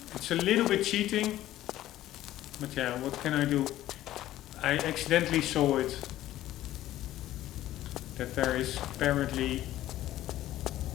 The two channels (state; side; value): quieter; right; 14.1 dB